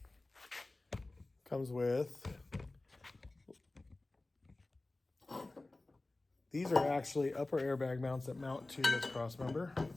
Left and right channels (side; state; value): right; quieter; 3.0 dB